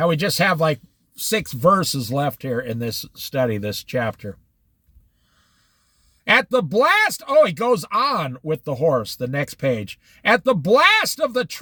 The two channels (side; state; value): both; identical; correlation 1.00